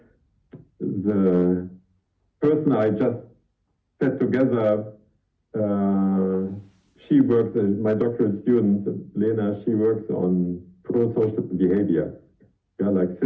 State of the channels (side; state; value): both; identical; correlation 1.00